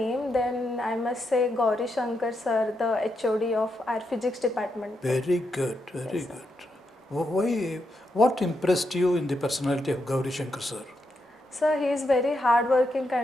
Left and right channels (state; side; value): normal; both; correlation 0.82